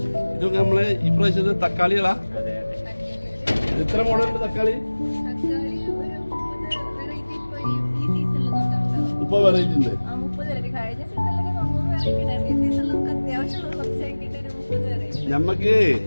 ഇതൊക്കെ നമ്മള് ഇപ്രാവശ്യത്തെ തക്കാളികളാ? എത്ര മോഡലുണ്ട് തക്കാളി? ഇപ്പൊ വെറൈറ്റി ഉണ്ട്. നമുക്ക്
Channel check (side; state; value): both; inverted; correlation -1.00